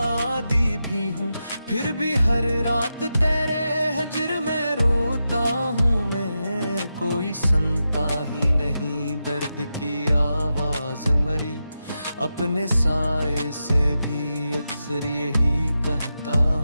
आदी भी हूँ, फिर भी हर रात तेरे हजर में रोता हूँ मैं। कोई सुनता ही नहीं दर्द की आवाज मरी, अपने साए से भी अक्सर यही कहता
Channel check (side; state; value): both; inverted; correlation -0.89